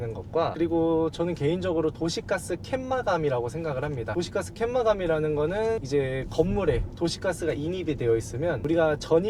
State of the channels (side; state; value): both; identical; correlation 1.00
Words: 것과, 그리고 저는 개인적으로 도시가스 캔마감이라고 생각을 합니다. 도시가스 캔마감이라는 거는 이제 건물에 도시가스가 인입이 되어 있으면 우리가